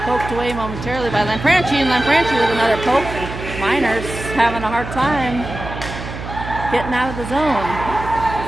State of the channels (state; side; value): noise; right; hum, 9 dB below the sound